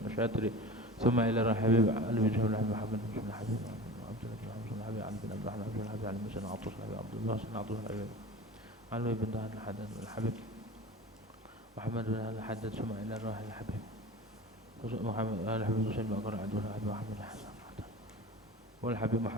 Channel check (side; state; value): both; normal; correlation 0.35